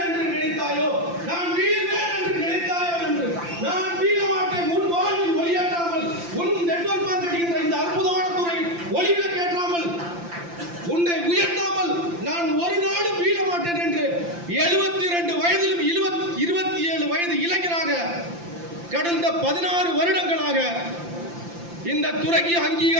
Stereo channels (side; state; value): left; late; 5.8 ms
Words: என்று நினைத்தாயோ, நான் வீழ்வேன் என்று நினைத்தாயோ என்று நான் வீழ மாட்டேன். உன் வாழ்வில் ஒளியாற்றாமல், உன் நெட்வொர்க் மார்க்கெட்டிங் இந்த அற்புதமான துறை ஒளிவிளக்கேற்றாமல், உன்னை உயர்த்தாமல் நான் ஒரு நாளும் வீழ மாட்டேன் என்று 72 வயதிலும் 27 வயது இளைஞராக கடந்த 16 வருடங்களாக இந்த துறைக்கு